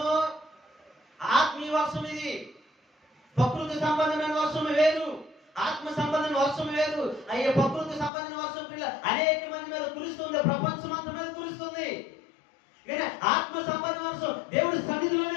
ఆత్మీయ వర్షం. ఇది ప్రకృతి సంబంధమైన వర్షం వేరు, ఆత్మ సంబంధమైన వర్షం వేరు. అయ్యే ప్రకృతి సంబంధమైన వర్షం పిల్ల అనేక మంది మీద కురుస్తుంది, ప్రపంచం అంతా మీద కురుస్తుంది. కానీ ఆత్మ సంబంధ వర్షం దేవుడి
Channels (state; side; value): drops out; right; at 8.1 s